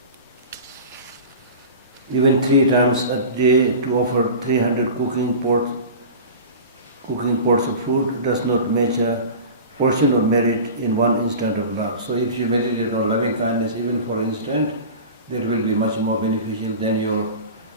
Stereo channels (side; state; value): both; inverted; correlation -0.35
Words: Even 3 times a day to offer 300 cooking pots of food does not match a portion of merit in one instant of love. So if you meditate on loving kindness even for an instant, that will be much more beneficial than your,